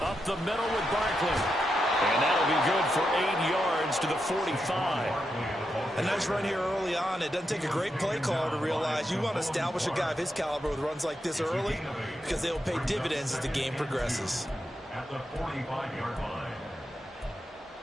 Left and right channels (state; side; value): normal; both; correlation 0.85